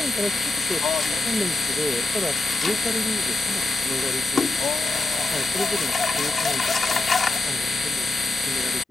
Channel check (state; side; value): quieter; right; 3.1 dB